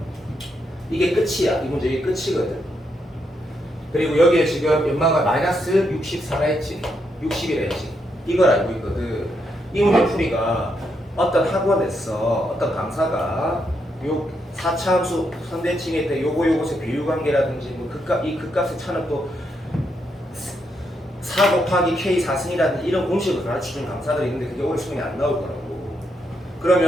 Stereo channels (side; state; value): both; normal; correlation 0.79